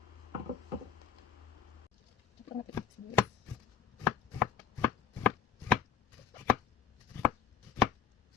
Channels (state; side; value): quieter; right; 7.1 dB